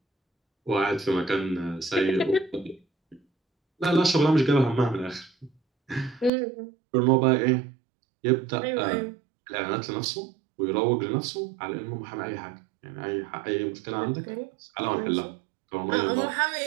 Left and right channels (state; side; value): drops out; left; at 6.3 s